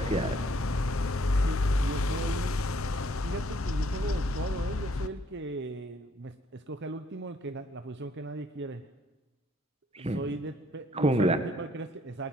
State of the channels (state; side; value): normal; both; correlation 0.66